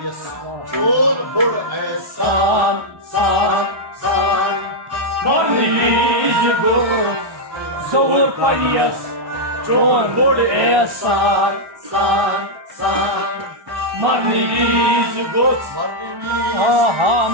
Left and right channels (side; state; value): left; late; 1.2 ms